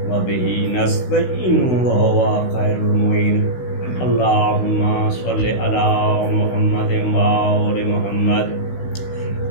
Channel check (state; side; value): late; right; 16 ms